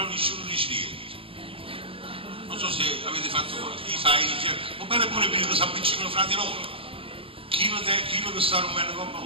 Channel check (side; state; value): left; late; 0.27 ms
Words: nessuno dice niente. Non so se avete fatto cosa, chi sai, va bene pure per che si avvicinano fra di loro. Chi lo sta rompendo come